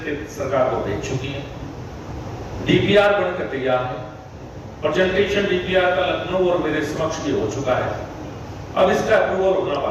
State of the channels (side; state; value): both; identical; correlation 1.00